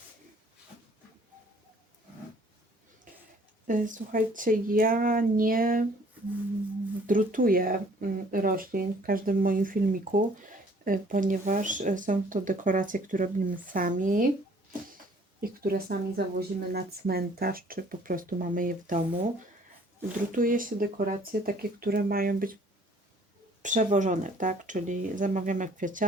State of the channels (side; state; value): both; normal; correlation 0.57